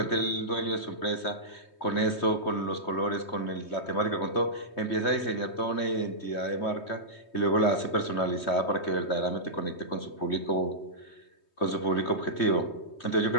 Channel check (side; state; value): right; late; 3.2 ms